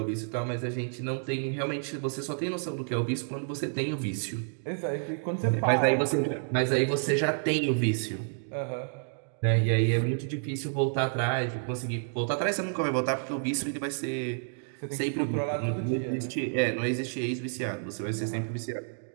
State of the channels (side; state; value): left; silent; digital silence